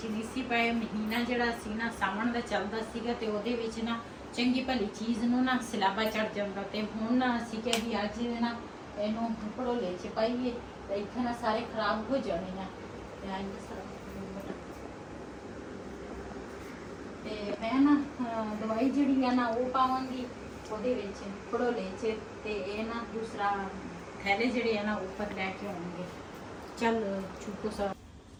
ਨਹੀਂ ਸੀ ਪਏ। ਮਹੀਨਾ ਜਿਹੜਾ ਸੀ ਨਾ ਸਾਵਣ ਦਾ ਚੱਲਦਾ ਸੀਗਾ ਤੇ ਉਹਦੇ ਵਿੱਚ ਨਾ ਚੰਗੀ ਭਲੀ ਚੀਜ਼ ਨੂੰ ਨਾ ਸਿਲਾਬਾ ਚੜ ਜਾਂਦਾ ਤੇ ਹੁਣ ਅਸੀਂ ਕਿਹਾ ਵੀ ਅੱਜ ਨਾ ਇਹਨੂੰ ਭੜੋਲੇ ਚ ਪਾਈਏ ਤੇ ਇੱਥੇ ਨਾ ਸਾਰੇ ਖਰਾਬ ਹੋ ਜਾਣੇ ਆ। ਤੇ ਮੈਂ ਨਾ ਦਵਾਈ ਜਿਹੜੀ ਆ ਨਾ ਉਹ ਪਾਵਾਂਗੀ ਉਹਦੇ ਵਿੱਚ ਭੜੋਲੇ ਚ ਤੇ ਇਹ ਨਾ ਦੂਸਰਾ ਥੈਲੇ ਜਿਹੜੇ ਆ ਨਾ ਉੱਪਰ ਲੈ ਕੇ ਆਉਣਗੇ। ਚੱਲ ਚੁੱਕੋ ਸਾ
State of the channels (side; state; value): both; identical; correlation 1.00